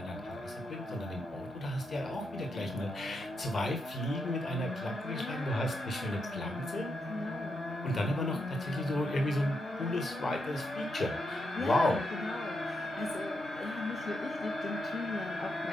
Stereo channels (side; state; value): both; normal; correlation 0.83